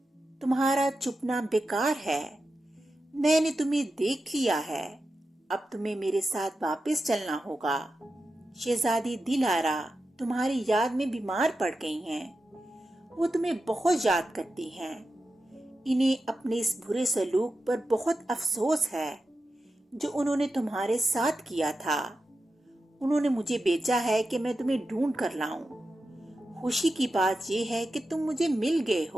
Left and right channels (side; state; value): both; normal; correlation 0.91